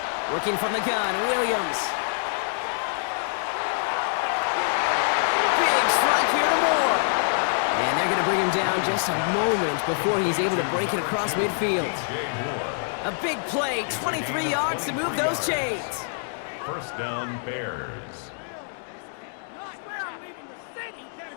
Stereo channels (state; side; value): silent; right; digital silence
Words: Working from the gun, Williams. Big strike here to Moore. And they're going to bring him down just a moment before he's able to break it across midfield. A big play, 23 yards to move those chains. First down, Bears. I swear I'm leaving the city.